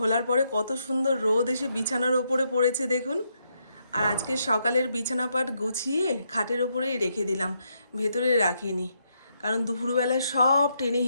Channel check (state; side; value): inverted; both; correlation -0.78